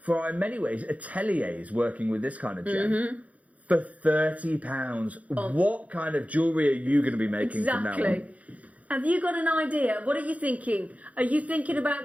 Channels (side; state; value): left; late; 0.069 ms